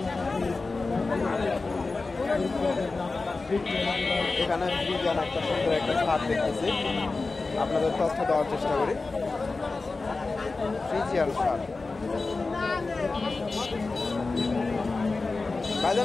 এখানে ফ্রিজিয়ান একটা সুন্দর একটা সার দেখতেছি, আপনাদের তথ্য দেওয়ার চেষ্টা করি। ফ্রিজিয়ান সার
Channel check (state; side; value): quieter; right; 3.7 dB